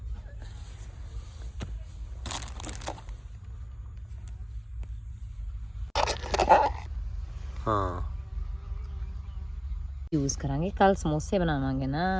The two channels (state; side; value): identical; both; correlation 1.00